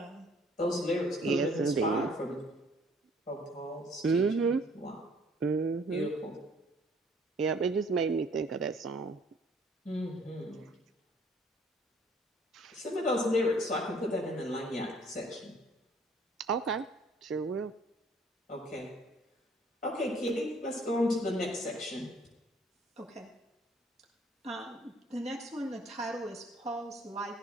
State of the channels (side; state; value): both; normal; correlation 0.58